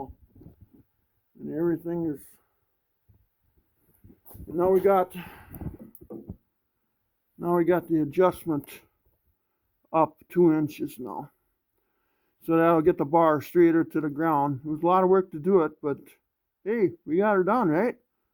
and everything is. Now we got the adjustment up 2 inches now. So that'll get the bar straighter to the ground. It was a lot of work to do it, but hey, we got her done, right?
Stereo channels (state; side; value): identical; both; correlation 1.00